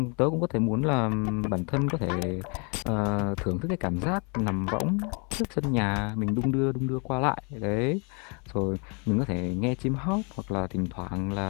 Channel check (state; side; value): quieter; right; 34.6 dB